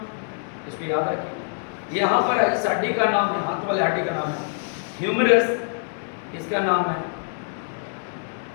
इसको याद रखिए। यहाँ पर इस हड्डी का नाम है, हाथ वाले हड्डी का नाम है ह्यूमरस, इसका नाम है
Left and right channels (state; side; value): silent; right; 62 dB below the other